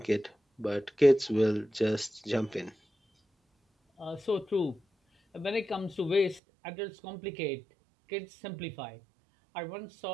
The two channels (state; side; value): drops out; left; at 6.4 s